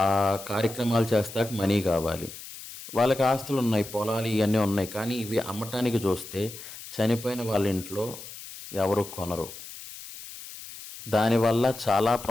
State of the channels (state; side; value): noise; left; hiss, 14 dB below the sound